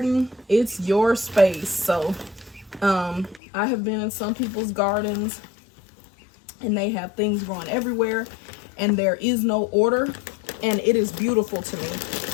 it's your space. So I have been in some people's gardens and they have things growing everywhere and there is no order, and it is beautiful to me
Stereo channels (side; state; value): right; drops out; at 3.4 s